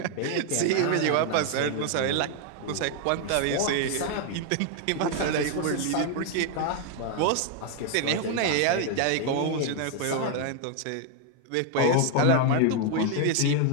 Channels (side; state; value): both; different; correlation 0.00